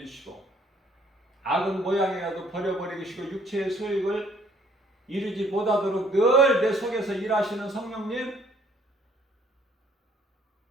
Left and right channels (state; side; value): normal; both; correlation 0.62